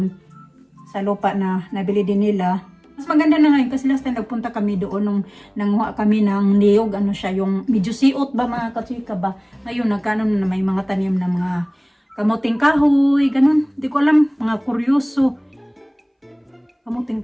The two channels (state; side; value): identical; both; correlation 1.00